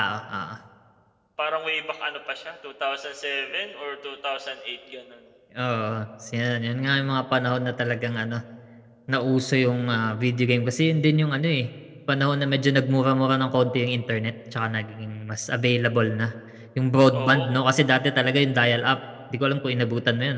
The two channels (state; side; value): identical; both; correlation 1.00